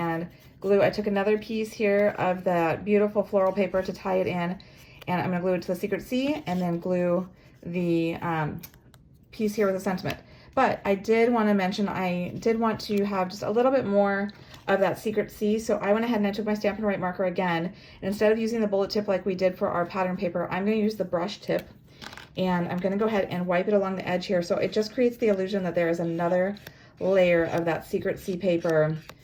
glue. I took another piece here of that beautiful floral paper to tie it in, and I'm going to glue it to the Secret C, and then glue the piece here with the sentiment. But I did want to mention, I did want to have just a little bit more of that Secret C, so I went ahead and I took my Stampin' Write marker again, and instead of using the bullet tip like we did for our pattern paper, I'm going to use the brush tip, and I'm going to go ahead and wipe it along the edge here, so it just creates the illusion that there is another layer of that Secret C paper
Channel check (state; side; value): identical; both; correlation 1.00